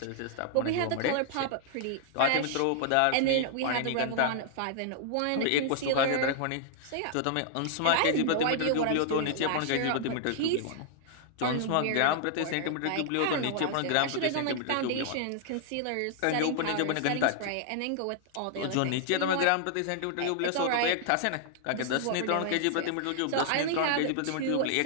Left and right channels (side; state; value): both; different; correlation -0.01